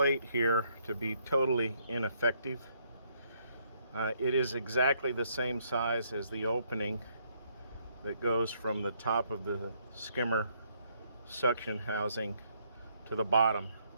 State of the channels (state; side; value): inverted; both; correlation -0.71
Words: here to be totally ineffective. It is exactly the same size as the opening that goes from the top of the skimmer suction housing to the bottom.